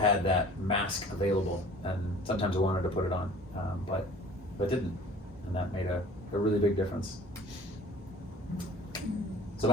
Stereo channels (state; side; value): normal; both; correlation 0.45